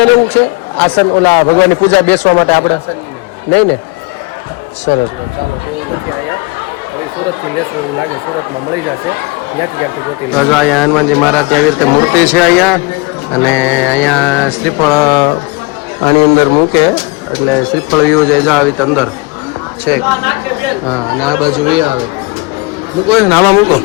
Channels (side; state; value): right; quieter; 25.9 dB